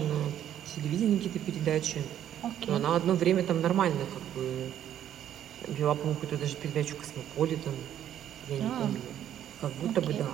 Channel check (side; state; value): left; quieter; 10.7 dB